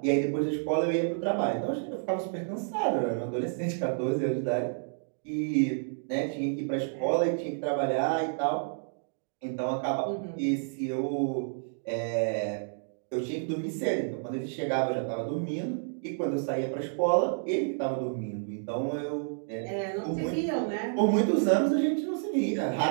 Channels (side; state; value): left; silent; digital silence